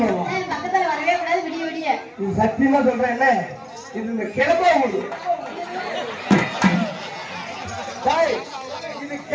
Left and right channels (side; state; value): both; identical; correlation 1.00